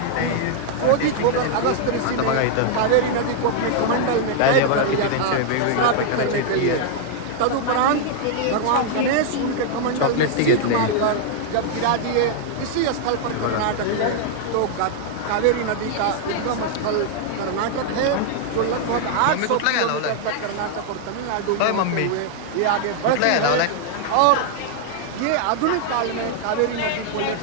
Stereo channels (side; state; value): both; different; correlation 0.00